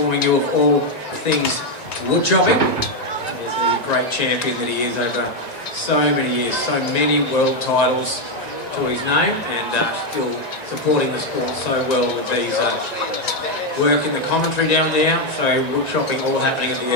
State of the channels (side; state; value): right; late; 1.9 ms